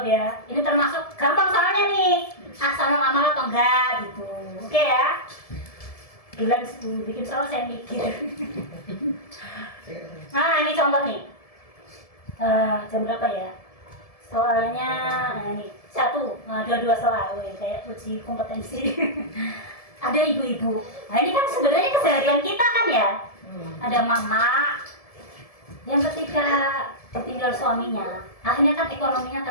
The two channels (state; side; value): late; right; 1.7 ms